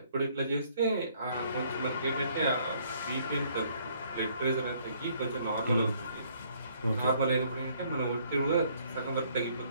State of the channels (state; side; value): inverted; both; correlation -0.64